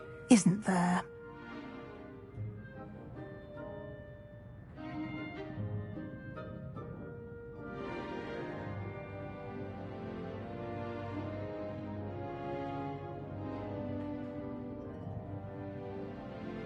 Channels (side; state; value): both; identical; correlation 1.00